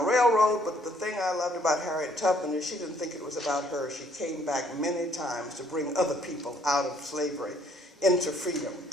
Railroad, but the thing I loved about Harriet Tubman is she didn't think it was about her. She came back many times to bring other people out of slavery into freedom.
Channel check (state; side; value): normal; both; correlation 0.64